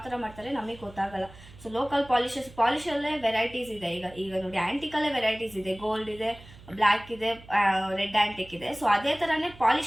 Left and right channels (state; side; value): noise; right; hum, 20 dB below the sound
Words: ತರ ಮಾಡ್ತಾರೆ ನಮಗೆ ಗೊತ್ತಾಗಲ್ಲ. ಸೊ ಲೋಕಲ್ ಪಾಲಿಶಲ್ಲೇ ವೆರೈಟೀಸ್ ಇದೆ. ಈಗ ನೋಡಿ, ಆಂಟಿಕಲ್ಲೇ ವೆರೈಟೀಸ್ ಇದೆ. ಗೋಲ್ಡ್ ಇದೆ, ಬ್ಲ್ಯಾಕ್ ಇದೆ, ರೆಡ್ ಆ್ಯಂಟಿಕ್ ಇದೆ. ಸೊ ಅದೇ ಥರನೇ